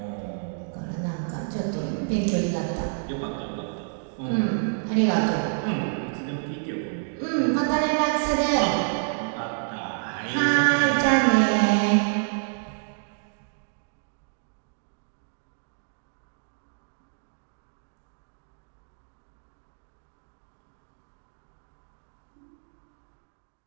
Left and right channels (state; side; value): silent; left; digital silence